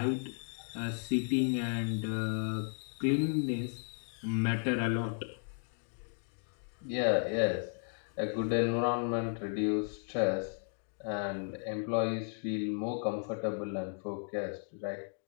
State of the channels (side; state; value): right; silent; 55 dB below the other